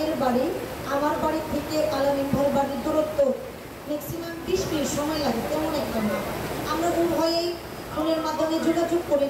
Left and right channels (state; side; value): identical; both; correlation 1.00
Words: বাড়ি, আমার বাড়ি থেকে আলামিন ভাইয়ের বাড়ির দূরত্ব ম্যাক্সিমাম 20 মিনিট সময় লাগে, তেমন একটা না। আমরা উভয়েই ফোনের মাধ্যমে যোগাযোগ করে